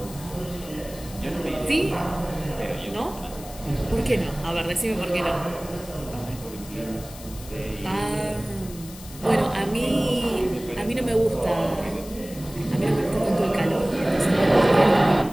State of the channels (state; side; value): noise; left; hiss, 17 dB below the sound